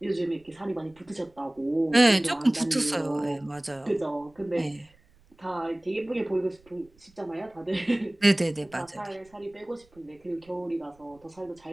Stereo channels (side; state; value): right; noise; rumble, 30 dB below the sound